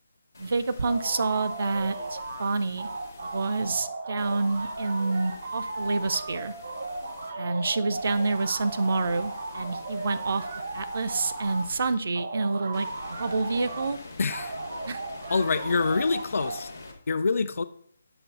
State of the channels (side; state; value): both; inverted; correlation -0.87